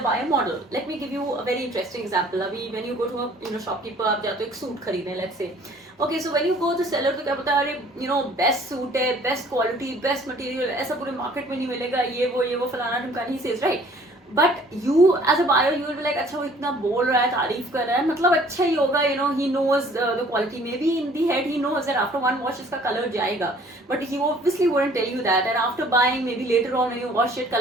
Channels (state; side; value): normal; both; correlation 0.55